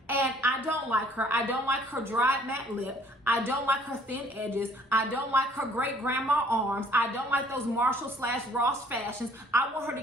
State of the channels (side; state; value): both; normal; correlation 0.58